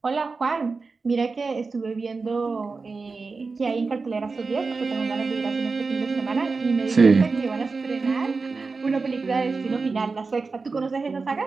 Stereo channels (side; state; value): left; quieter; 4.2 dB